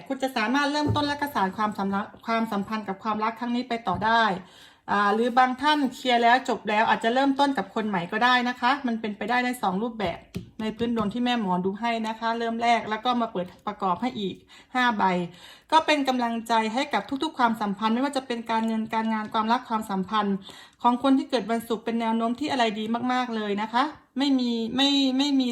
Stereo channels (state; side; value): identical; both; correlation 1.00